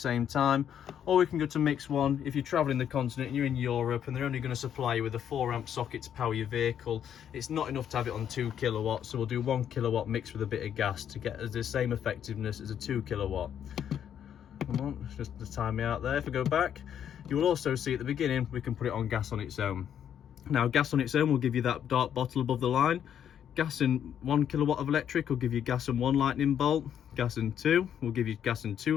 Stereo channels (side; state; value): right; quieter; 9.2 dB